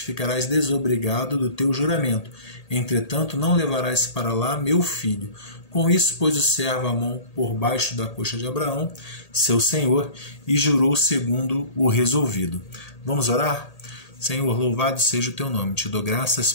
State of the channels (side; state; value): right; late; 1.8 ms